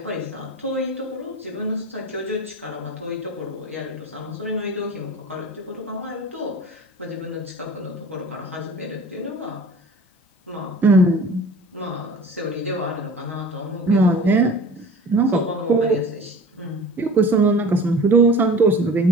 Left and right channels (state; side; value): normal; both; correlation 0.41